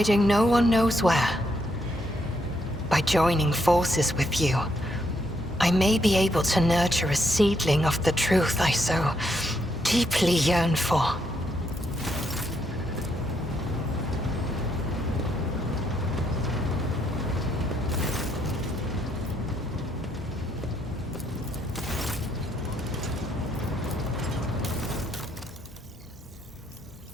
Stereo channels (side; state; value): both; normal; correlation 0.75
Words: no one knows where. By joining forces with you, I may be able to nurture a seedling of the truth I so deeply yearn for.